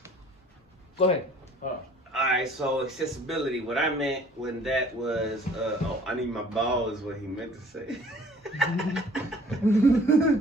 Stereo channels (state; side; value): normal; both; correlation 0.54